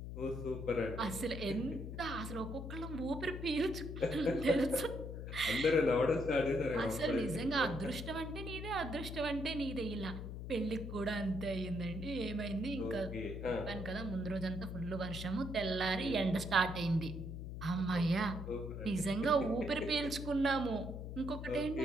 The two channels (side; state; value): left; noise; hum, 7 dB below the sound